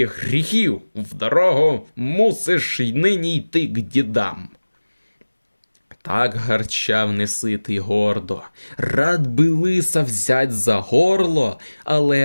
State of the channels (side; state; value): both; inverted; correlation -1.00